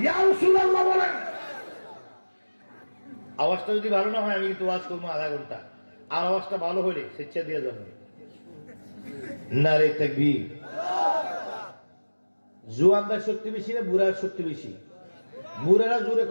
ইয়া রাসূলুল্লাহ বলেন। আওয়াজটা যদি ভালো না হয় আমি কিন্তু ওয়াজ করবো আধা ঘন্টা, আর আওয়াজটা ভালো হলে স্বেচ্ছা দিয়ে যাবে। নারে তাকবীর। জুয়ানদার শক্তি বেশি না বুড়ার শক্তি বেশি? বুড়ারা জোরে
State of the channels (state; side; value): inverted; both; correlation -1.00